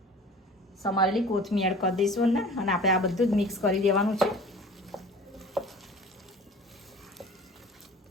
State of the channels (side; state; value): both; normal; correlation 0.43